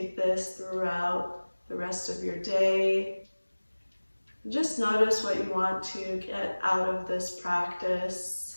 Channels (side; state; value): both; inverted; correlation -1.00